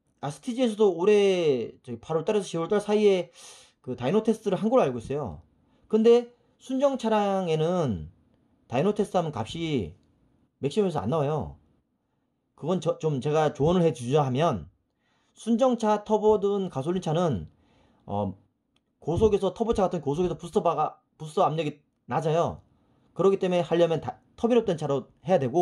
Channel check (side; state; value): both; identical; correlation 1.00